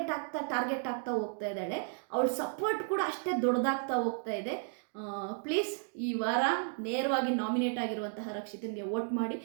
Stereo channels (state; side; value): silent; left; 55 dB below the other